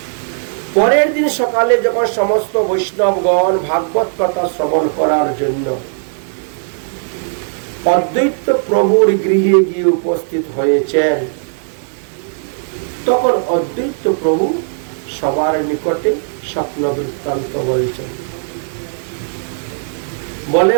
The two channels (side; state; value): left; silent; digital silence